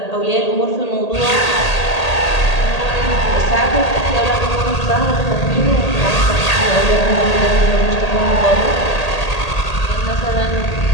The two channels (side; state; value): right; late; 1.8 ms